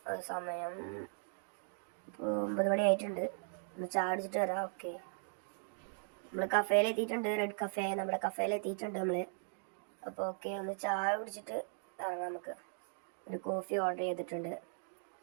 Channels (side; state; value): left; silent; digital silence